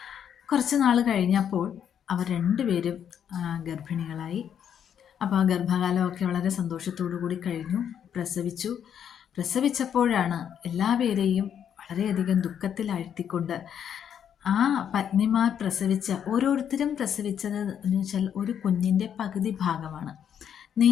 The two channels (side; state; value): right; quieter; 8.8 dB